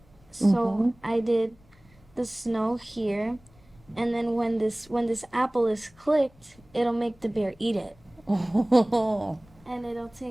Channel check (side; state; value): left; noise; rumble, 28 dB below the sound